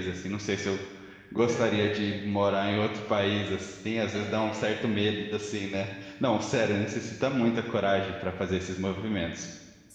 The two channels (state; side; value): identical; both; correlation 1.00